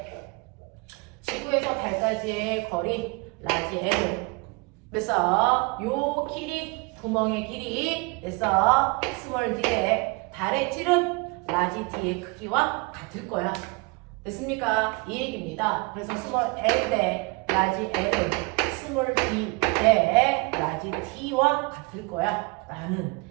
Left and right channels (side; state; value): left; quieter; 28.3 dB